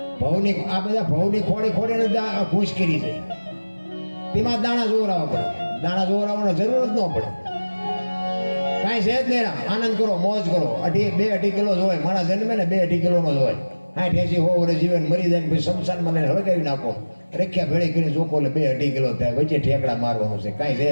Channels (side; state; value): both; inverted; correlation -1.00